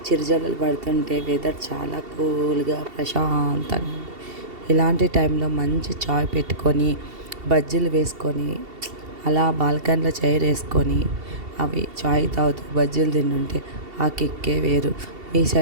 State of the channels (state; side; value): late; left; 2.7 ms